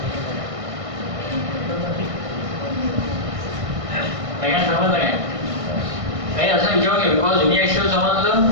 समजलं काय? काही असं विचारू घ्या. बिकॉज युनिॲक्सियल समजलं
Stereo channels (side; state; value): left; late; 1.6 ms